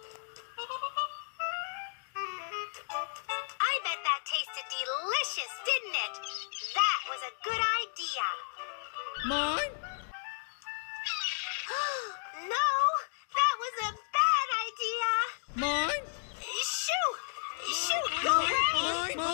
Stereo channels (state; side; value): silent; right; digital silence